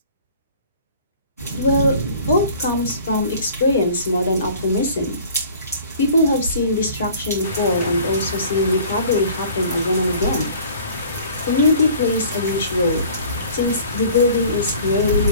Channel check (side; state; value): both; inverted; correlation -0.49